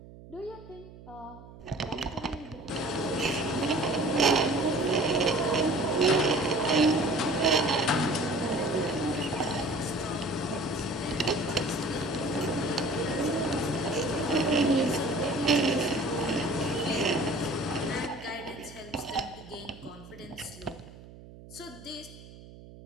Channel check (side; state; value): right; noise; hum, 18 dB below the sound